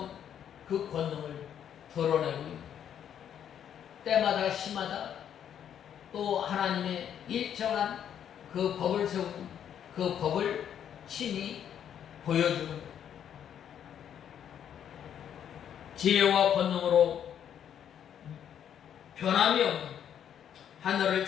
그 권능을 드러내고 있는 때마다 시마다 또 하나님의 일정한 그 법을 세우고 그 법을 친히 보여주는 것. 지혜와 권능으로 변함이 없는 하늘을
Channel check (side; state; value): right; quieter; 9.3 dB